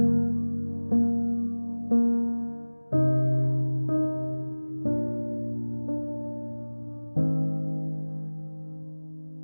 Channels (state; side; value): inverted; both; correlation -1.00